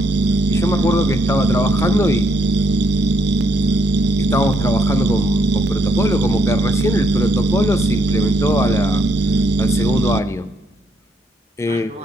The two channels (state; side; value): normal; both; correlation 0.73